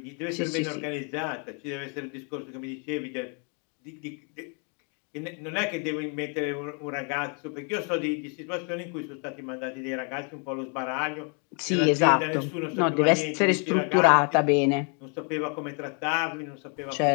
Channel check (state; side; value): quieter; right; 38.2 dB